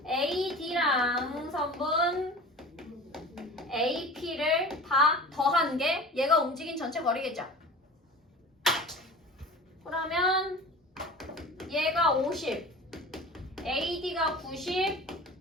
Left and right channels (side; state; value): both; normal; correlation 0.38